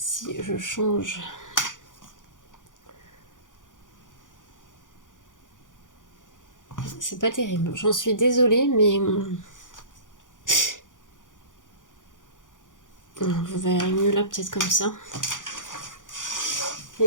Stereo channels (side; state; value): right; late; 0.87 ms